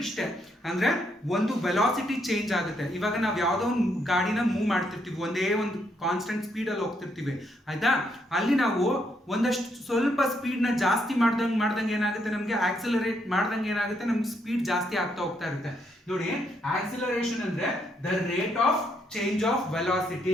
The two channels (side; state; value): both; normal; correlation 0.75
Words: ಇಷ್ಟೇ, ಅಂದ್ರೆ ಒಂದು ವೆಲಾಸಿಟಿ ಚೇಂಜ್ ಆಗುತ್ತೆ. ಇವಾಗ ನಾವು ಯಾವುದೋ ಒಂದು ಗಾಡಿನ ಮೂವ್ ಮಾಡ್ತಿರ್ತೀವಿ, ಒಂದೇ ಒಂದು ಕಾನ್ಸ್ಟೆಂಟ್ ಸ್ಪೀಡ್ ಅಲ್ಲಿ ಹೋಗ್ತಿರ್ತೀವಿ, ಆಯ್ತಾ. ಅಲ್ಲಿ ನಾವು ಒಂದಷ್ಟು ಸ್ವಲ್ಪ ಸ್ಪೀಡ್ ನ ಜಾಸ್ತಿ ಮಾಡ್ದಂಗೆ ಏನಾಗುತ್ತೆ, ನಮ್ಗೆ ಆಕ್ಸಿಲರೇಟ್ ಮಾಡ್ದಂಗೆ ಏನಾಗುತ್ತೆ, ನಮ್ಗೆ ಸ್ಪೀಡ್ ಜಾಸ್ತಿ ಆಗ್ತಾ ಹೋಗ್ತಾ ಇರುತ್ತೆ. ನೋಡಿ, ಆಕ್ಸಿಲರೇಷನ್ ಅಂದ್ರೆ the rate of change of